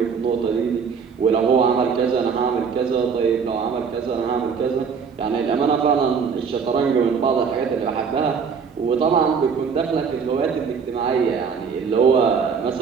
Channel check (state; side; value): quieter; left; 6.1 dB